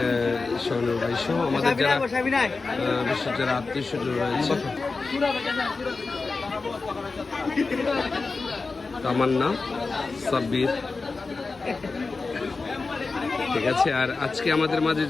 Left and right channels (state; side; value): quieter; right; 4.0 dB